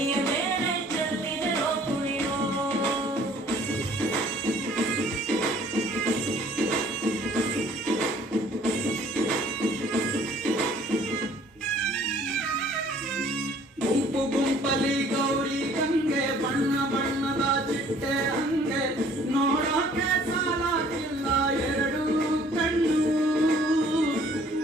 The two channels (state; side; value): normal; both; correlation 0.56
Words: ಮೇಲೆ ಚೆಲ್ಲಿದರೋ ಕುಣಿಯೋ ಗುಂಪು ಗುಂಪಲಿ ಗೌರಿ ಗಂಗೆ ಬಣ್ಣ ಬಣ್ಣದ ಚಿಟ್ಟೆ ಹಂಗೆ ನೋಡೋಕೆ ಸಾಲಾಗಿಲ್ಲ ಎರಡು ಕಣ್ಣು